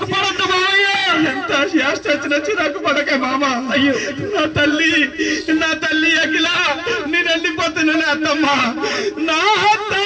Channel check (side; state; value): both; identical; correlation 1.00